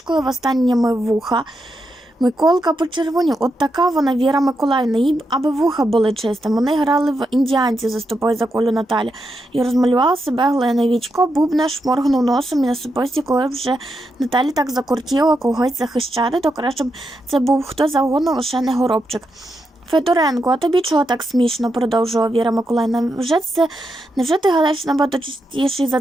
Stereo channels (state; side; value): normal; both; correlation 0.84